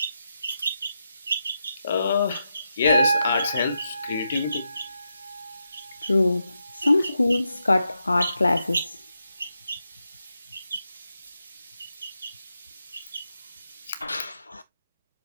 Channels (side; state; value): both; inverted; correlation -0.85